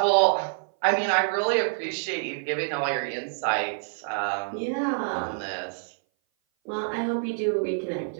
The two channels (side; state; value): left; silent; 58 dB below the other